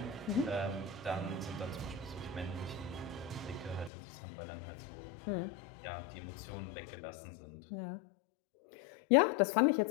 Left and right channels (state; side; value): drops out; right; at 3.9 s